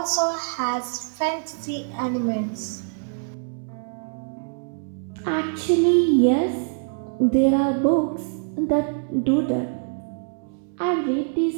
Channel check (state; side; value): silent; left; digital silence